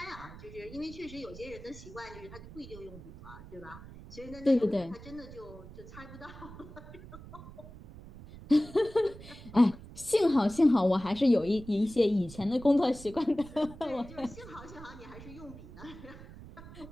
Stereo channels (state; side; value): noise; right; rumble, 16 dB below the sound